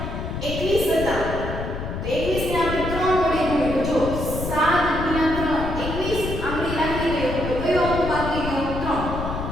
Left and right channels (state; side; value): noise; left; rumble, 5 dB below the sound